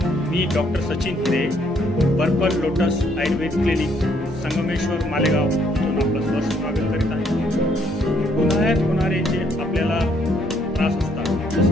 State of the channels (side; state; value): both; normal; correlation 0.68